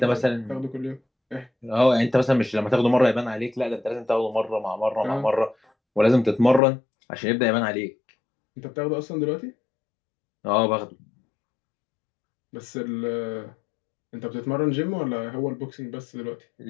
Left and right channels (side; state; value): right; drops out; at 6.6 s